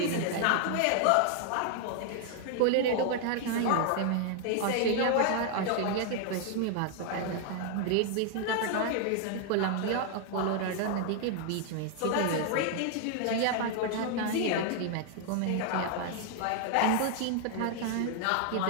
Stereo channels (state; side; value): different; both; correlation 0.00